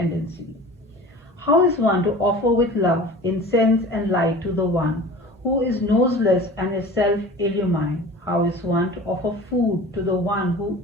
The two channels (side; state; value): both; normal; correlation 0.39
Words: How is one to offer with love, incense and light to the one who is noseless and is self-illumined? How is one to offer food to the one who